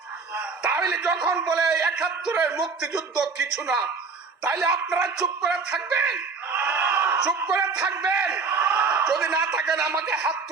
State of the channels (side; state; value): left; quieter; 4.8 dB